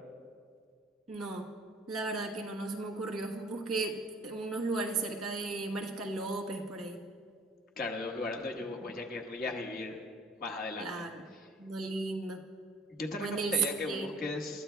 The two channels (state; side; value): normal; both; correlation 0.54